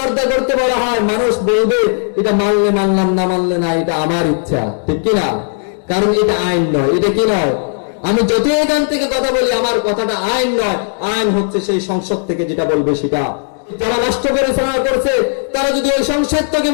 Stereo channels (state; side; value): silent; right; digital silence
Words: করতে বলা হয়, মানুষ বলবে এটা মানলে মানলাম, না মানলে না, এটা আমার ইচ্ছা, ঠিক কিনা? কারণ এটা আইন নয়। এটা কি নয়? আমি যতই এখান থেকে কথা বলি, আমার কথাটা আইন নয়, আইন হচ্ছে সেই সংসদ থেকে যেটা বলবে সেটা। যারা নষ্ট করে সারা করছে, তারা যদি ওই সংসদ থেকে